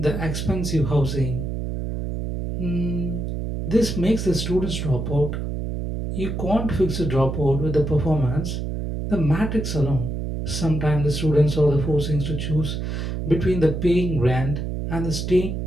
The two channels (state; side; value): noise; right; hum, 3 dB below the sound